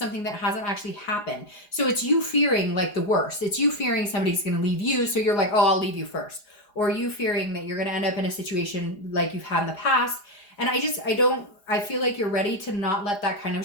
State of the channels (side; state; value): right; late; 4.9 ms